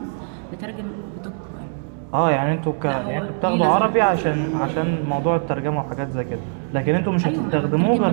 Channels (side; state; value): left; silent; 61 dB below the other